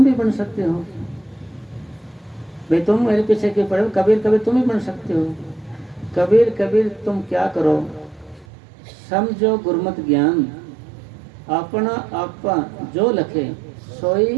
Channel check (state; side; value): drops out; left; at 8.5 s